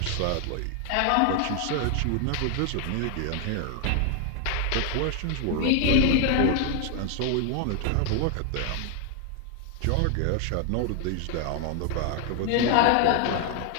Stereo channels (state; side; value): different; both; correlation 0.00